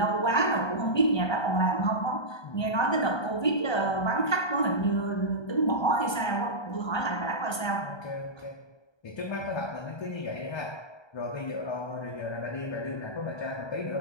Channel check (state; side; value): late; right; 1.3 ms